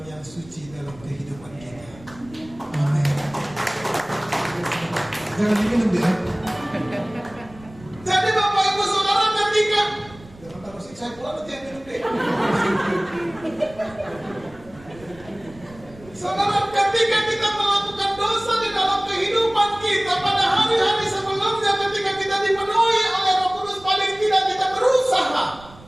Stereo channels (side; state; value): right; noise; rumble, 21 dB below the sound